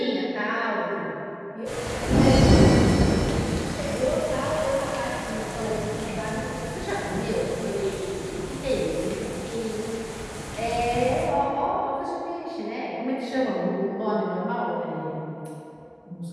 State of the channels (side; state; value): both; identical; correlation 1.00